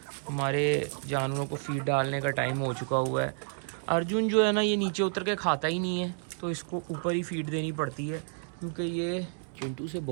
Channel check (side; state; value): left; silent; 58 dB below the other